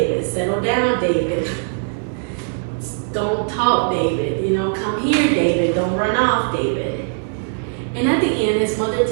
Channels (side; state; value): left; silent; 66 dB below the other